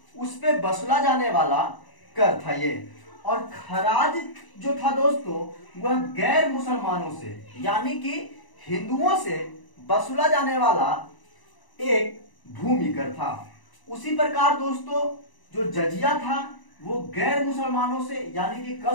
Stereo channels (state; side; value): late; right; 1.0 ms